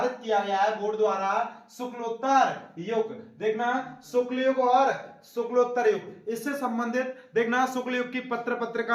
किया गया है बोर्ड द्वारा शुक्लोत्तर युग। देखना शुक्ल युग और शुक्लोत्तर युग, इससे संबंधित देखना शुक्ल युग की पत्र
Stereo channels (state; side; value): identical; both; correlation 1.00